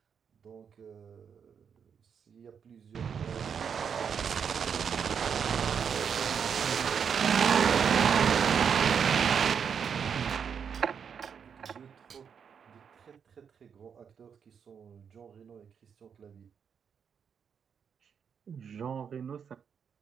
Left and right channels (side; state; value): left; quieter; 7.1 dB